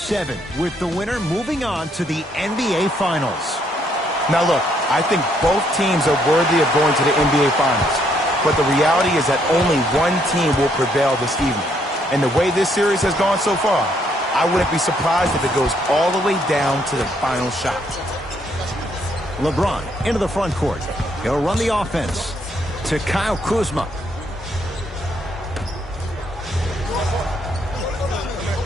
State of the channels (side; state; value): both; normal; correlation 0.71